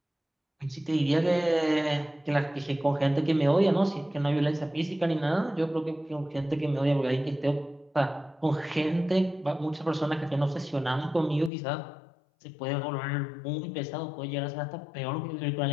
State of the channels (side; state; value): right; drops out; at 11.5 s